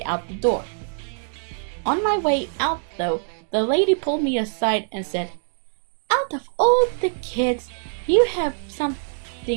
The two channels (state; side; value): silent; left; digital silence